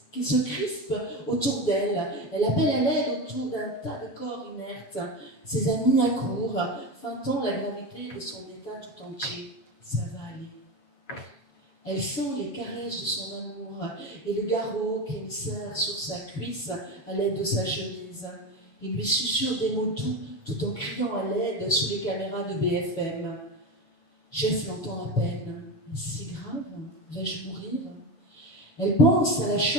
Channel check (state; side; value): late; right; 7.2 ms